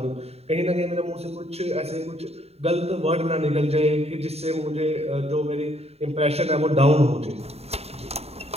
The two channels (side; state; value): left; late; 0.30 ms